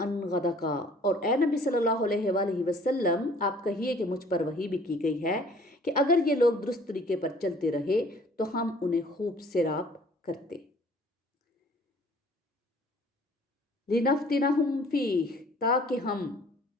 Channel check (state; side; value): normal; both; correlation 0.54